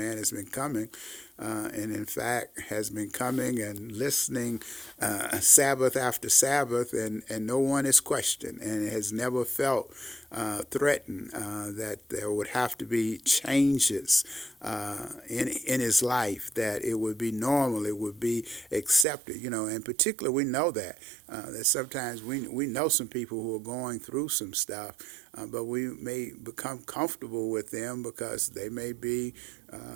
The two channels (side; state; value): left; drops out; at 19.1 s